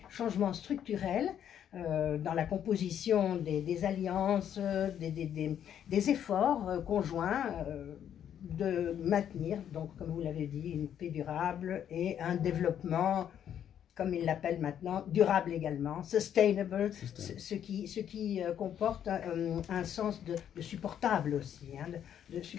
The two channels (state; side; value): quieter; right; 9.6 dB